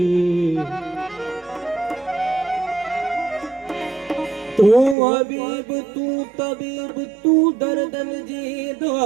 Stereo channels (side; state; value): left; drops out; at 5.0 s